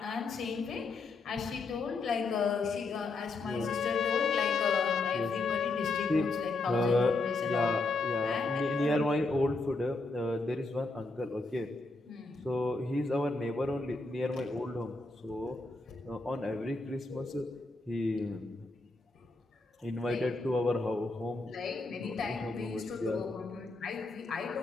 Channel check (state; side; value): quieter; right; 3.4 dB